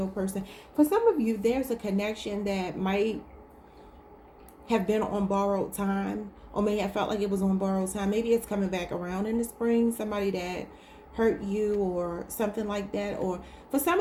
person. For some of you, there's a connection that might have been on borrowed time, or may have felt like it was on borrowed time. Maybe it's coming back around in the spring. Somebody that hurt you or something like that. Or for some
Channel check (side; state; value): both; identical; correlation 1.00